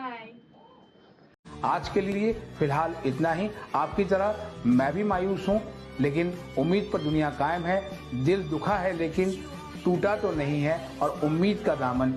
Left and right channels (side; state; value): both; identical; correlation 1.00